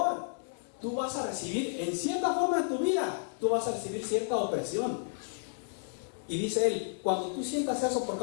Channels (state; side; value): silent; right; 56 dB below the other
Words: tú vas a recibir, en cierta forma en tu vida, tú vas a recibir cierta opresión. Y dice él, cuando tú sientas eso por